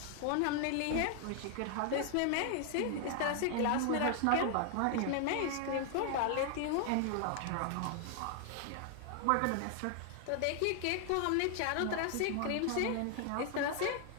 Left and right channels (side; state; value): both; different; correlation 0.00